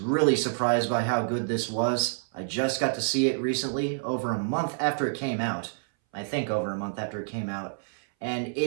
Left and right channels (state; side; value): silent; left; 59 dB below the other